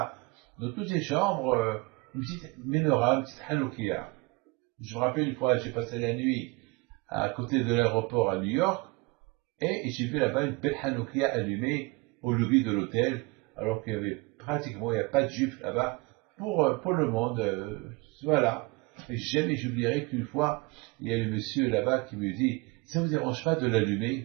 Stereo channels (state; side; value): quieter; left; 25.3 dB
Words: dans toutes les chambres une petite menorah, une petite Hanoukia. Je me rappelle une fois, j'ai passé la nuit à côté de l'aéroport à New York et j'ai vu là-bas une belle Hanoukia allumée au lobby de l'hôtel, alors qu'il y avait pratiquement, il n'y a pas de juifs là-bas pour le monde. Voilà. Et jamais j'oublierai qu'une fois, il y a le monsieur là-bas qui me dit, ça ne vous dérange pas de